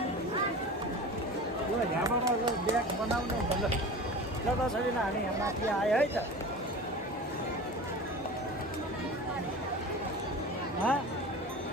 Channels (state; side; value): normal; both; correlation 0.34